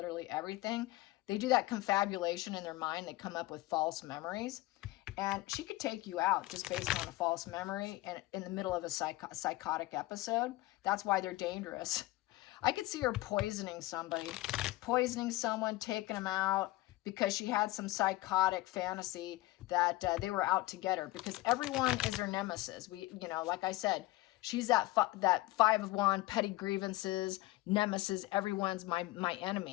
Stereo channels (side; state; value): right; quieter; 19.0 dB